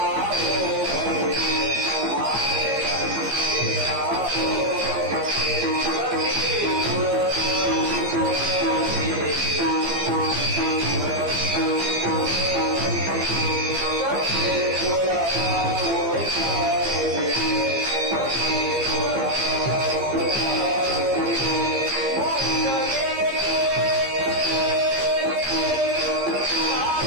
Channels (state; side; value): late; left; 15 ms